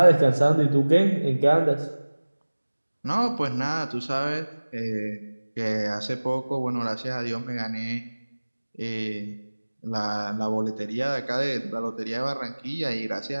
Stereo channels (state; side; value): inverted; both; correlation -1.00